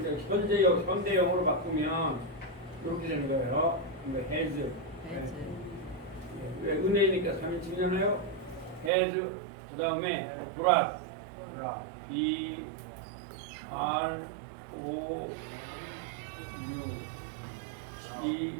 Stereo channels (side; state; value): left; drops out; at 8.9 s